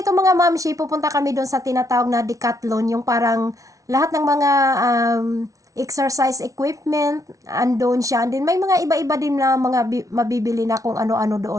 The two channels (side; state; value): left; late; 0.17 ms